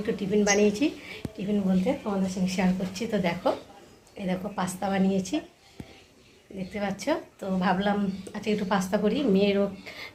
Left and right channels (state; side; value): identical; both; correlation 1.00